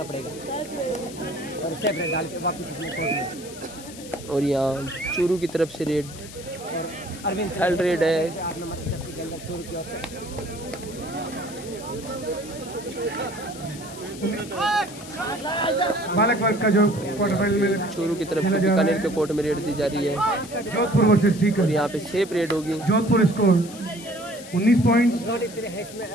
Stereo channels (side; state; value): left; noise; hiss, 16 dB below the sound